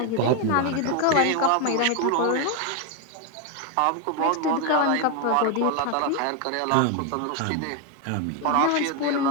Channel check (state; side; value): different; both; correlation 0.01